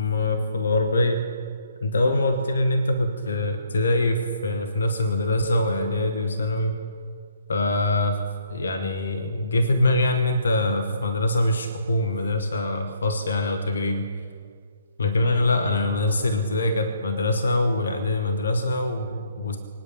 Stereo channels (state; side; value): inverted; both; correlation -0.67